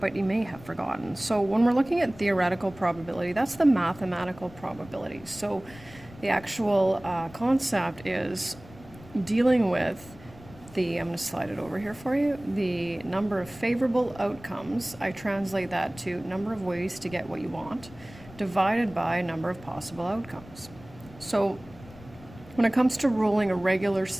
you may have forgotten. So when we're looking at theoretical probability, that's the mathematical probability. So the actual concept is dealing with I'm going to slide it over here for you, the number of favorable outcomes. I translate that to number of ways to get what you want, divided by number of possible outcomes. So when it comes to rolling a regular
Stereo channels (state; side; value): noise; left; rumble, 20 dB below the sound